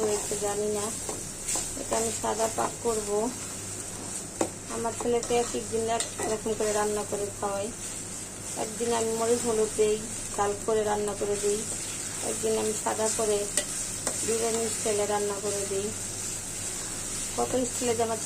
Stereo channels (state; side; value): identical; both; correlation 1.00